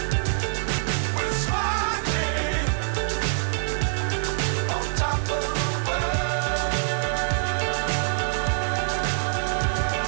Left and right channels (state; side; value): silent; left; 62 dB below the other